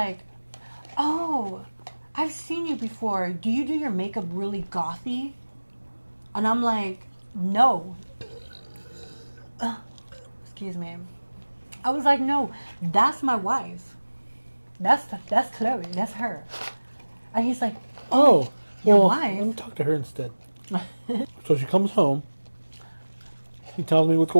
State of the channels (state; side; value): inverted; both; correlation -1.00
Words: oh, I've seen you before. Do you do your makeup really gothy? And I'm like, no. Excuse me. I was like, no, that's my wife. That's Chloe. That's her. And he's like, Oh, your well, wife? let me talk to her instead. So she comes home. He tells me what's